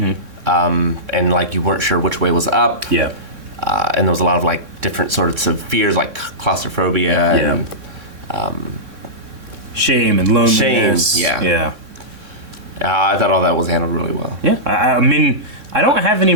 And like you weren't sure which way was up. Yeah. And there was a lot of like different sorts of fears, like claustrophobia. And, shame and loneliness. Yeah. I thought all that was handled really well. Yeah, I mean, I don't have any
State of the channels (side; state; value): left; late; 3.6 ms